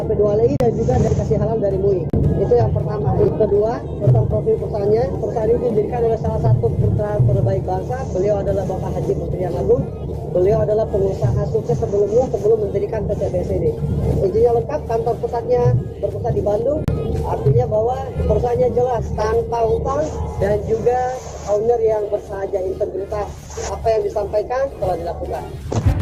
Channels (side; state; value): both; identical; correlation 1.00